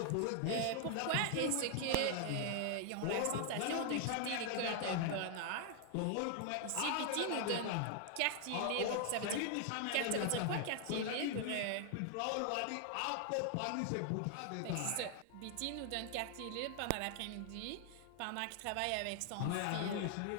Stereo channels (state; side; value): different; both; correlation 0.00